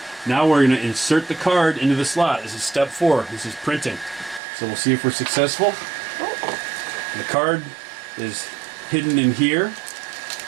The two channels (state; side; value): drops out; left; at 4.4 s